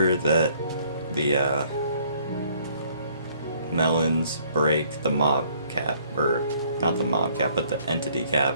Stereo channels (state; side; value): inverted; both; correlation -0.62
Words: that the melons break the mob cap, or not the mob cap, but the entity cap,